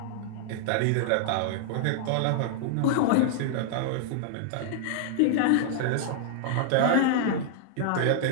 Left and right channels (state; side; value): different; both; correlation -0.01